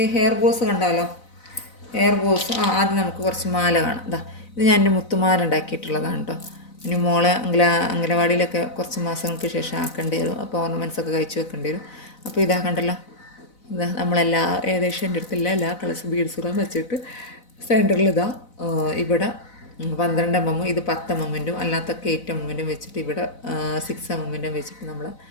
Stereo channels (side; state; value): right; late; 4.0 ms